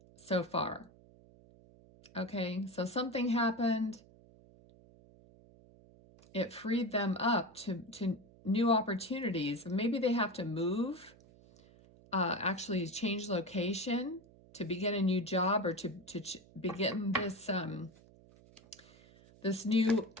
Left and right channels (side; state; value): right; noise; hum, 25 dB below the sound